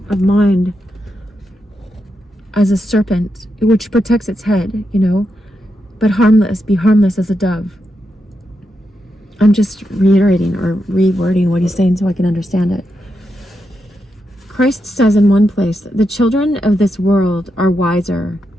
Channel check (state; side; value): normal; both; correlation 0.85